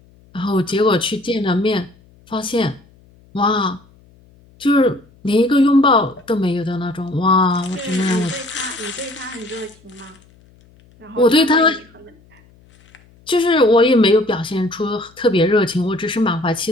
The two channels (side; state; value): left; noise; hum, 29 dB below the sound